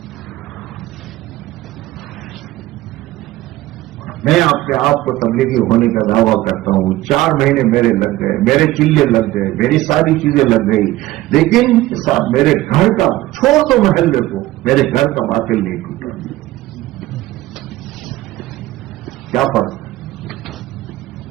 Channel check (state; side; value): quieter; left; 16.8 dB